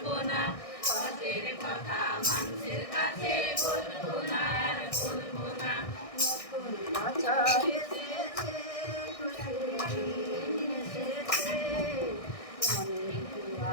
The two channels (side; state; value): right; late; 1.6 ms